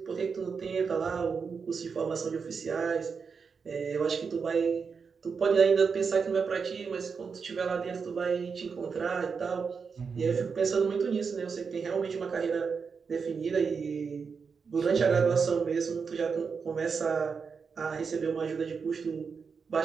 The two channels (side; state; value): left; quieter; 5.6 dB